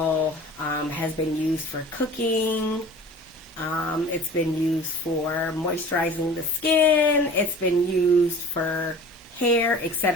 has been used for cooking. It's been used for moisturizing the skin. It's been used for hair,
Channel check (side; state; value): both; normal; correlation 0.41